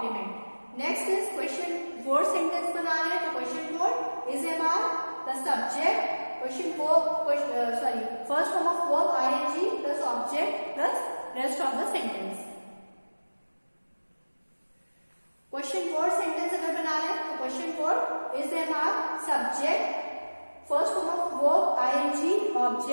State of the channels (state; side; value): inverted; both; correlation -1.00